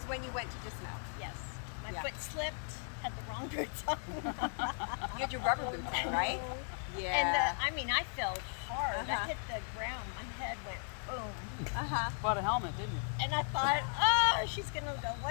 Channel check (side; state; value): right; silent; 53 dB below the other